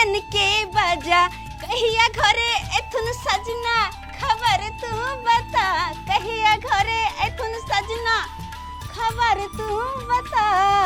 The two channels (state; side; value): identical; both; correlation 1.00